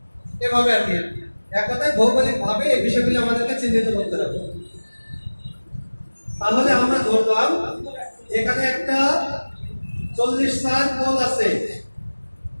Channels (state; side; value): inverted; both; correlation -1.00